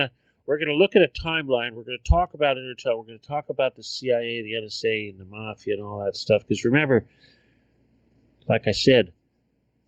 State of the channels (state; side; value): identical; both; correlation 1.00